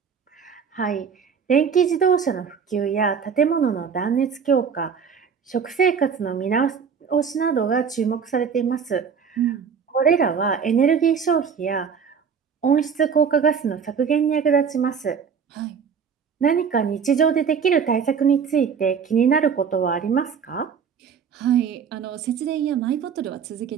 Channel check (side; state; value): left; quieter; 6.6 dB